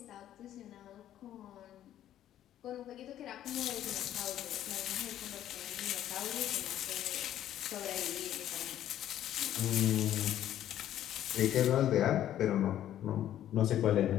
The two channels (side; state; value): right; quieter; 11.8 dB